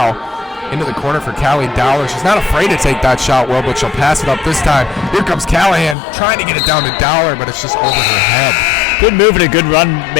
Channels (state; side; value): drops out; right; at 6.0 s